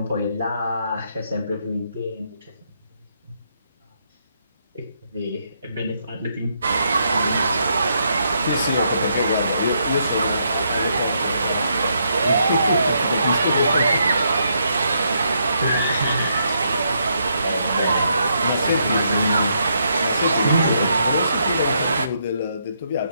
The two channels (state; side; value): inverted; both; correlation -0.76